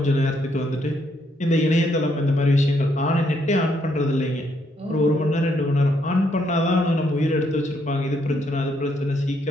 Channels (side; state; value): both; normal; correlation 0.74